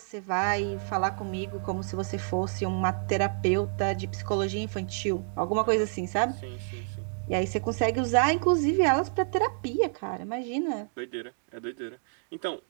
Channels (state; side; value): silent; left; digital silence